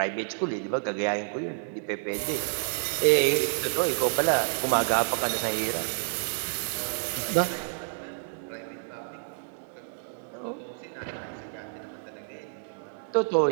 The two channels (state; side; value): silent; left; digital silence